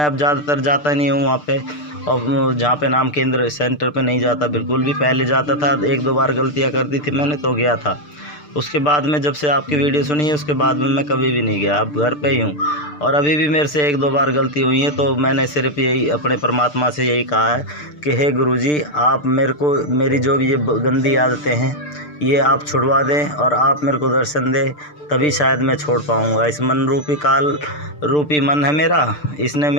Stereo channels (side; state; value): right; late; 6.7 ms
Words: अब ज़्यादातर जाता नहीं हूँ वहाँ पे, और जहाँ पे नाम केंद्र सेंटर पे नहीं जाता बिल्कुल भी। पहले जाता था, एक दो बार गलतियाँ कर दी थी मैंने तो गया था। उसके बाद में जब से आपकी वीडियो सुनी है उसके बाद में मैं कभी भी नहीं गया, अब घर पे ही हूँ। और अभी भी मेरे से एक दो बार गलती हुई है, तो मैंने सिर्फ यही अपने परमात्मा से यही कहा है कि हे गुरुजी, आप मेरे को मेरी जो भी ये गंदी आदतें हैं ये आप छुड़वा दें और आप मेरे को दर्शन दें, तभी शायद मैं छोड़ पाऊँगा। इस मन रूपी काल रूपी मन है मेरा, इसने